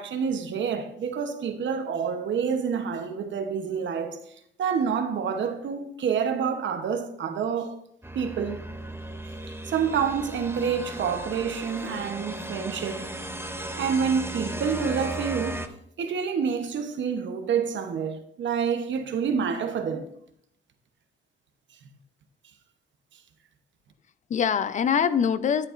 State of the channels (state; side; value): quieter; left; 3.4 dB